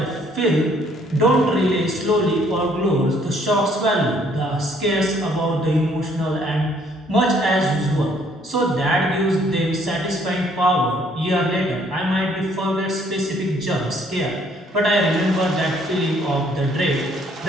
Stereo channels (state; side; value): normal; both; correlation 0.64